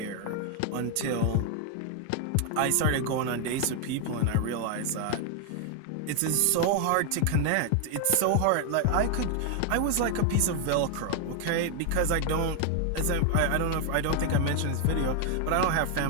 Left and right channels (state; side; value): different; both; correlation 0.00